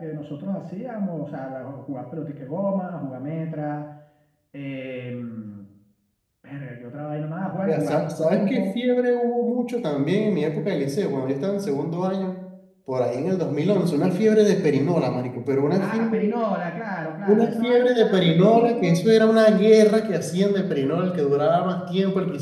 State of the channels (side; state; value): both; identical; correlation 1.00